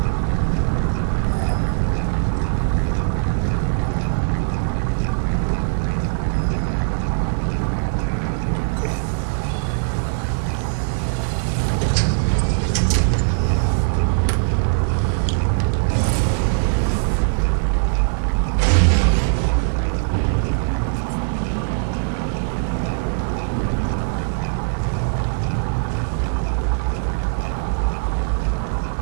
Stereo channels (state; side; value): silent; left; digital silence